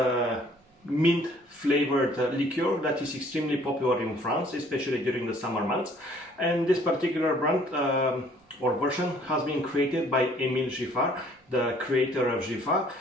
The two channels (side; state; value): both; normal; correlation 0.58